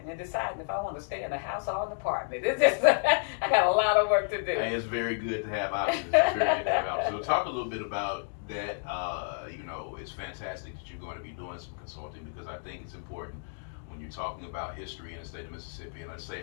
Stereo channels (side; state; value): right; silent; digital silence